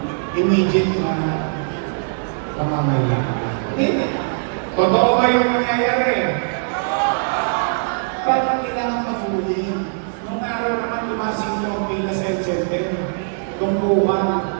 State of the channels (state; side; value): silent; left; digital silence